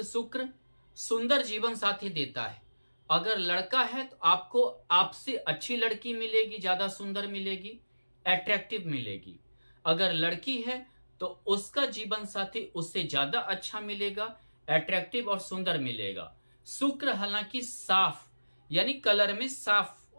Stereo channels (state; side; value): inverted; both; correlation -1.00